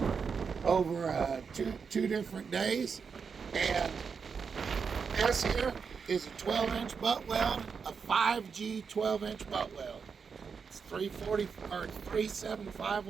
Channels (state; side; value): quieter; left; 5.8 dB